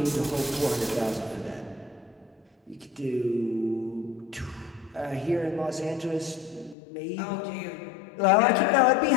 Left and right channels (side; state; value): right; drops out; at 6.8 s